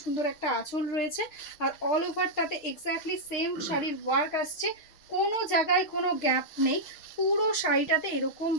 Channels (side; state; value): right; late; 6.2 ms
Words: সুন্দর একটা আঁচল রয়েছে। আর অল ওভারটাতে এক্স্যাক্টলি সেম শাড়ির ওয়ার্ক আসছে, কোনো জায়গায় কোনো গ্যাপ নেই, পুরো শাড়িটাতে এরকম